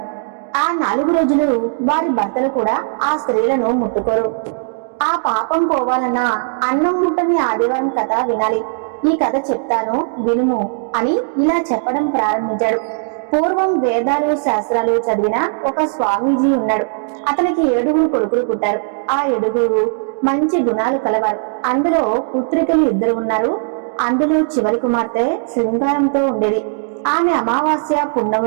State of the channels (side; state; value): left; silent; digital silence